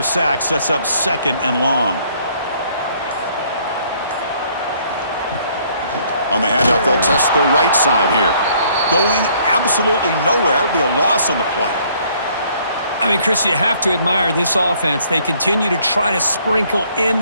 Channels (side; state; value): both; inverted; correlation -0.63